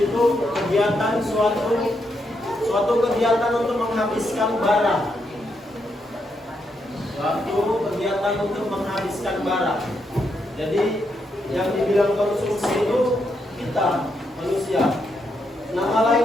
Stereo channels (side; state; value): both; normal; correlation 0.80